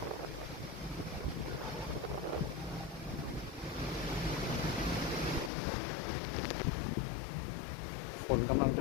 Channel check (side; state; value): right; drops out; at 5.5 s